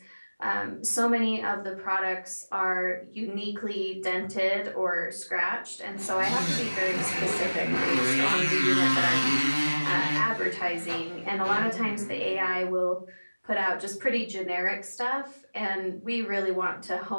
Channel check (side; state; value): both; inverted; correlation -1.00